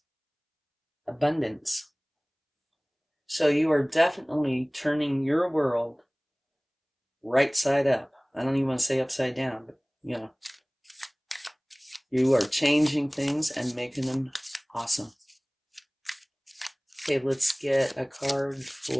Abundance. So you are definitely turning your world right side up. I don't even want to say upside down, but you are changing things and making them awesome. Okay, let's get a card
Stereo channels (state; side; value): identical; both; correlation 1.00